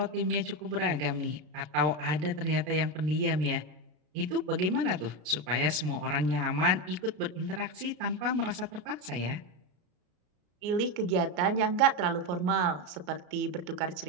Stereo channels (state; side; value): late; left; 33 ms